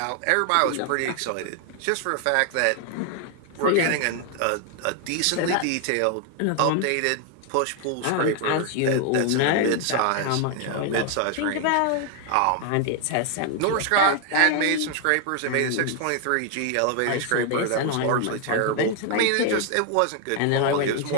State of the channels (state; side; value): different; both; correlation 0.00